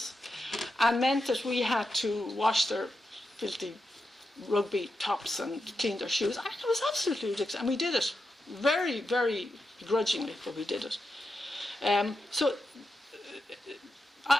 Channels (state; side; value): normal; both; correlation 0.87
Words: and meant that we had to wash their filthy rugby tops and clean their shoes. It was absolutely ridiculous, and we did it very, very begrudgingly, but we did it. So